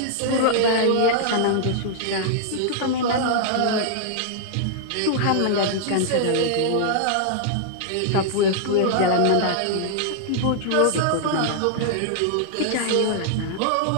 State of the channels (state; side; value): different; both; correlation -0.01